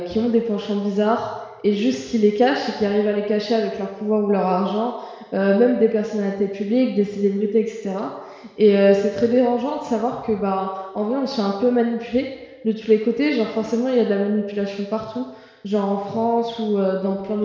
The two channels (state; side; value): identical; both; correlation 1.00